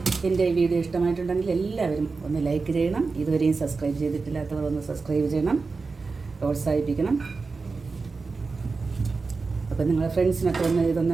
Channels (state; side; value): quieter; left; 4.3 dB